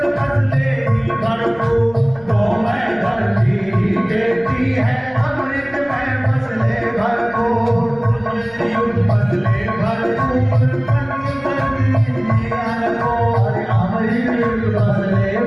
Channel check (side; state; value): left; noise; rumble, 25 dB below the sound